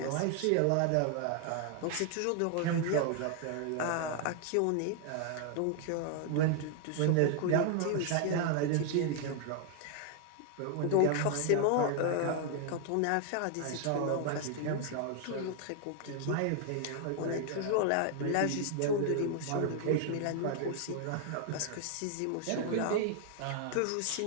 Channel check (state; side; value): different; both; correlation 0.00